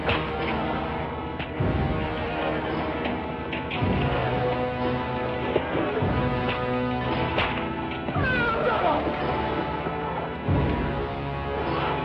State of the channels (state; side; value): identical; both; correlation 1.00